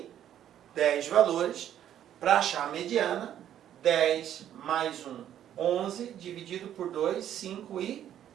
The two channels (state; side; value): quieter; left; 10.7 dB